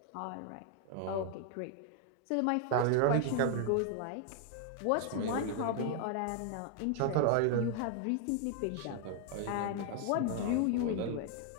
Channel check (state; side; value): different; both; correlation 0.00